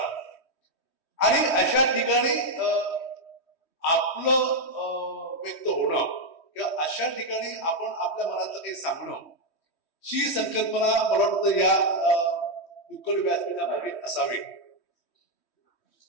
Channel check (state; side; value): late; right; 3.1 ms